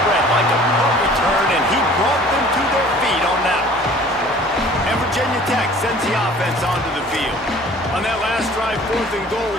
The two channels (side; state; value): both; normal; correlation 0.50